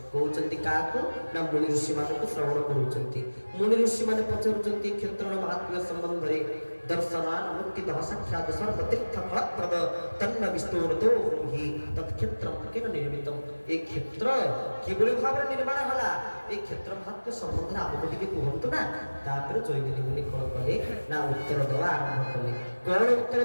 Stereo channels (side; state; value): both; inverted; correlation -1.00